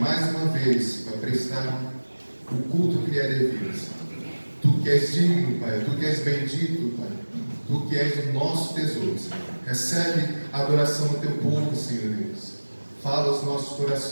uma vez para prestar o culto que lhe é devido. Tu que és digno, Pai. Tu que és bendito, Pai. Tu que és o nosso tesouro, Senhor. Recebe a adoração do teu povo, Senhor Deus. Fala aos nossos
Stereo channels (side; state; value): both; inverted; correlation -1.00